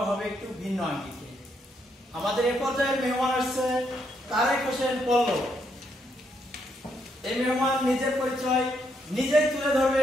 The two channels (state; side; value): normal; both; correlation 0.76